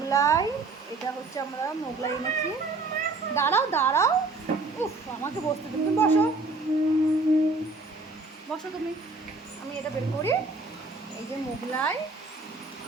এটা হচ্ছে আমরা মোগলাই এনেছি। দাঁড়াও দাঁড়াও, উফ আমাকে বসতে তুমি বসো, বসো তুমি, আমি এটা বের করি। এই যে মোগলাই,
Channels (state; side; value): quieter; left; 3.5 dB